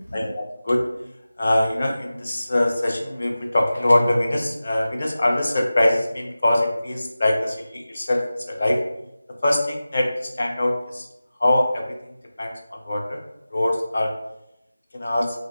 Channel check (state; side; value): inverted; both; correlation -0.95